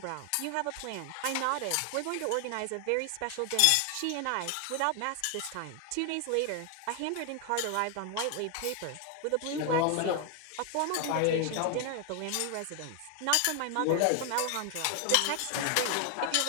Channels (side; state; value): both; different; correlation 0.00